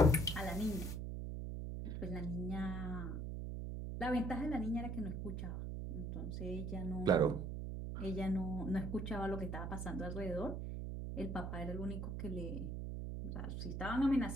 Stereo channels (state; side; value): noise; right; hum, 4 dB below the sound